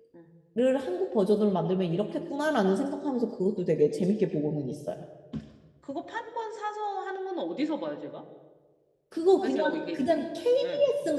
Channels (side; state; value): both; identical; correlation 1.00